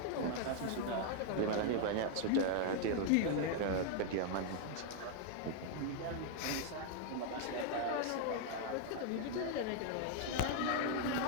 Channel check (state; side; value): different; both; correlation 0.00